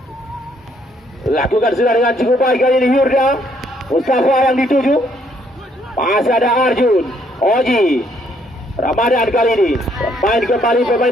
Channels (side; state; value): both; normal; correlation 0.69